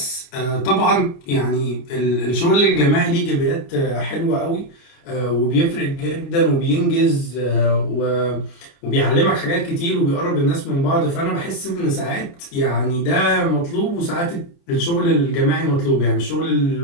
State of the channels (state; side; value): late; right; 29 ms